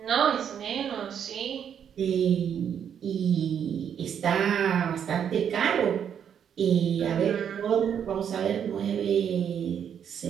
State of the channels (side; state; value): left; quieter; 8.4 dB